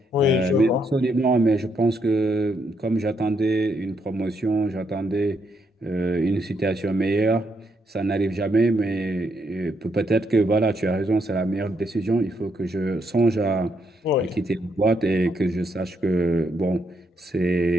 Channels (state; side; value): normal; both; correlation 0.77